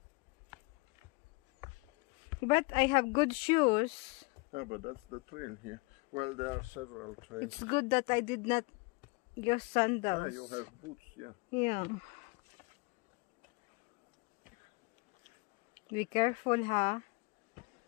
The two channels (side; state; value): right; quieter; 28.1 dB